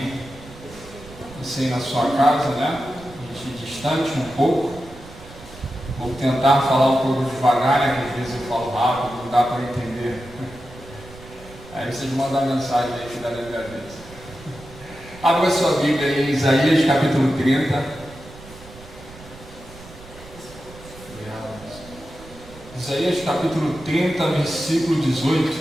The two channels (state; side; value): noise; right; rumble, 19 dB below the sound